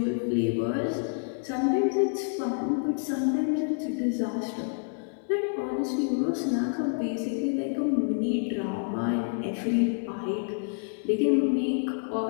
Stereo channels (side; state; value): right; silent; digital silence